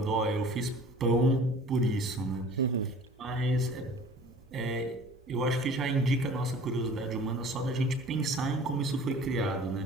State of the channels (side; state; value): both; normal; correlation 0.46